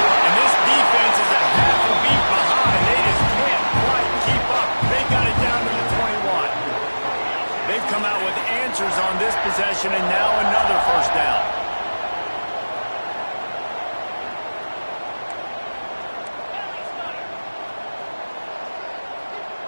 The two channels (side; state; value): both; inverted; correlation -1.00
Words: And this defense is a half a beat behind. They just can't quite keep up. They got it down to the 21. They've come out with answers on this possession, and now another first down.